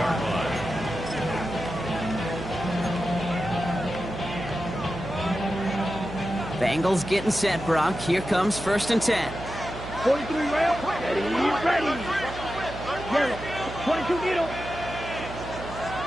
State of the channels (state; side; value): noise; right; hum, 11 dB below the sound